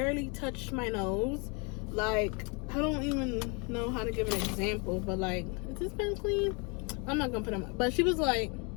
touched my nose. Like, I don't even know how to give an example, but like, is this pen clean? I'm not gonna put them up. But she was like,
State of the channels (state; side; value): quieter; right; 32.3 dB